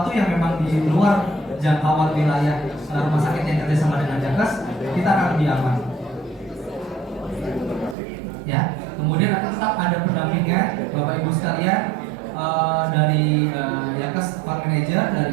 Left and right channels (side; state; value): left; drops out; at 8.0 s